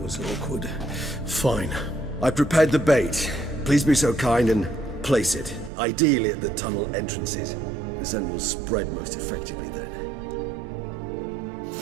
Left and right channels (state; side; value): drops out; left; at 5.7 s